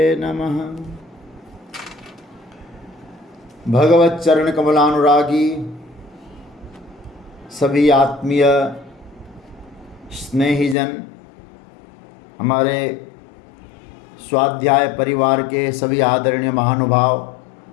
नमः। भगवत चरण कमलानुरागी सभी आत्मीय स्नेहीजन, हमारे स्वाध्याय परिवार के सभी आदरणीय महानुभाव,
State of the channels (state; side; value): drops out; right; at 10.8 s